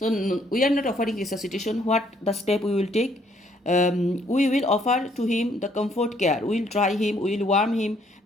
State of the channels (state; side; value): normal; both; correlation 0.66